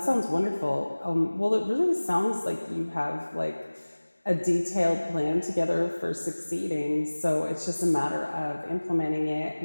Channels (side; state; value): both; inverted; correlation -1.00